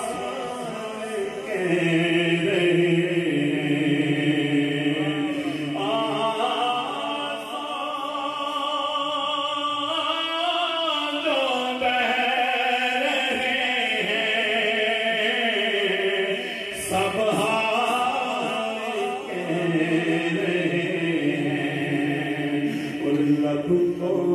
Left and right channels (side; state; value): both; identical; correlation 1.00